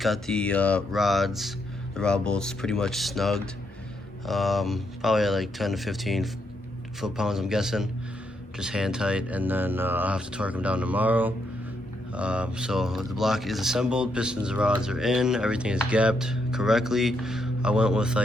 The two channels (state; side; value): normal; both; correlation 0.78